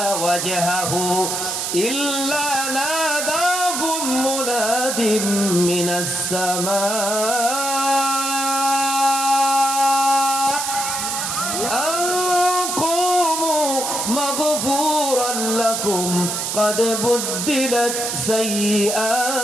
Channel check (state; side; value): noise; right; hiss, 2 dB below the sound